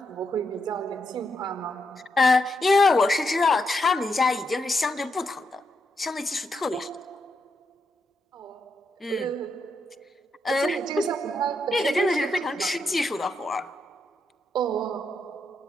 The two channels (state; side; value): normal; both; correlation 0.82